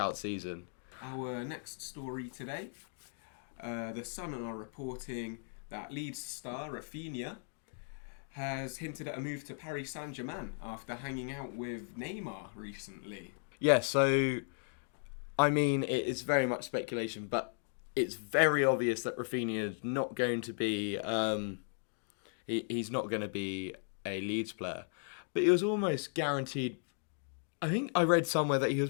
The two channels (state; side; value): silent; right; 54 dB below the other